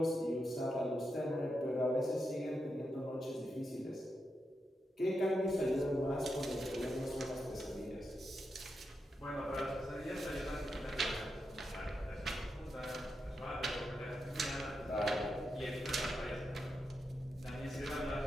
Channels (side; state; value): both; normal; correlation 0.86